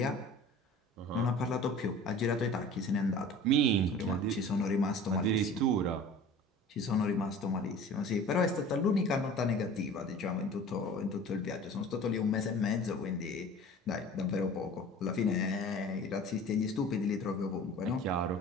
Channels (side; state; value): both; normal; correlation 0.42